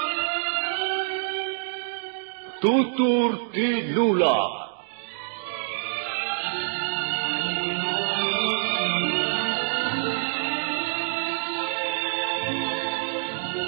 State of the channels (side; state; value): left; silent; digital silence